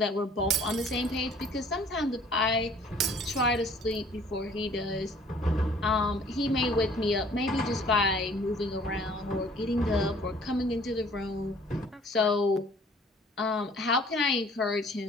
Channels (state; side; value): normal; both; correlation 0.55